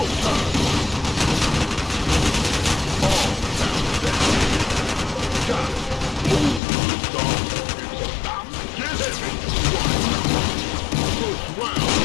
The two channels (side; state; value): right; drops out; at 6.6 s